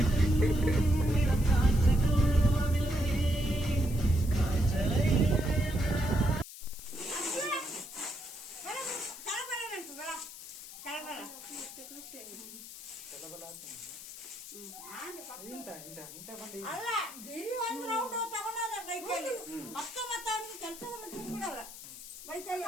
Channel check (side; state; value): left; noise; hiss, 14 dB below the sound